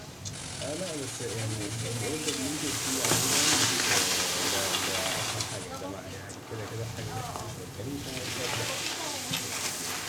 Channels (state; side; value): identical; both; correlation 1.00